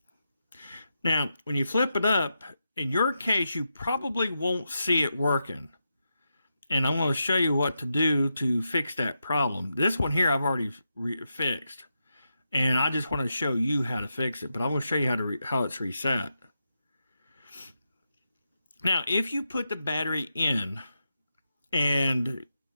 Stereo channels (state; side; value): inverted; both; correlation -0.86